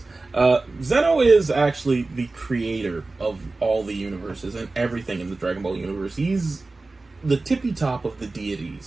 Zeno is actually the creator of all the universes and everything in the Dragon Ball universe. He's the tippy top of the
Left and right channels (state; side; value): quieter; left; 3.4 dB